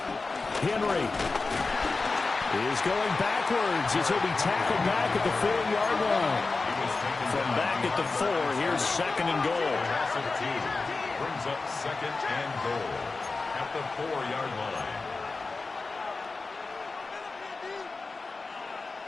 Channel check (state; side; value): quieter; right; 3.9 dB